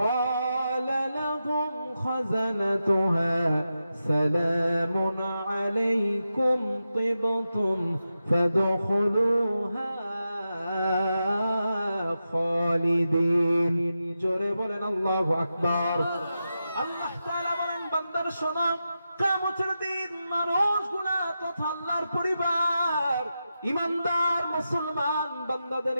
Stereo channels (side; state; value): both; inverted; correlation -0.90